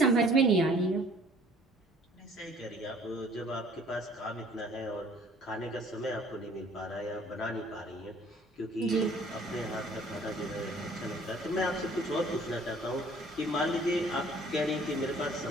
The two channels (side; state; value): both; normal; correlation 0.55